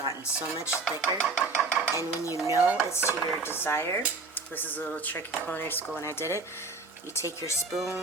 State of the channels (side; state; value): left; quieter; 3.8 dB